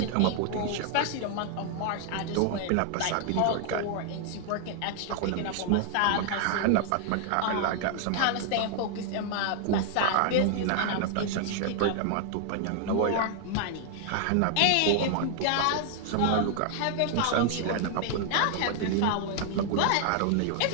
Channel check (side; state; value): both; different; correlation 0.00